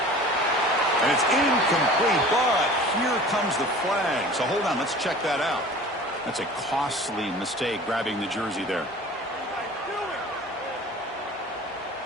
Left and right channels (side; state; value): both; normal; correlation 0.43